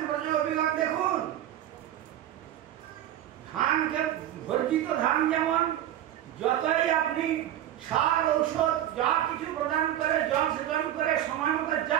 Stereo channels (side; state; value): left; quieter; 12.0 dB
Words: ব্রজে অভিজ্ঞতা দেখুন। ধানকে, ভর্জিত ধান যেমন যতই আপনি সার ঔষধ যা কিছু প্রদান করে, জল সেচন করে, সময় মতো